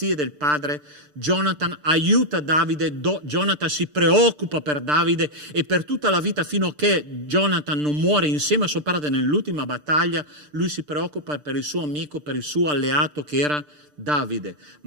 del padre. Jonathan aiuta Davide. Jonathan si preoccupa per Davide e per tutta la vita, fino a che Jonathan non muore insieme a suo padre nell'ultima battaglia, lui si preoccupa per il suo amico, per il suo alleato che era Davide.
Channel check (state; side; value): late; left; 6.7 ms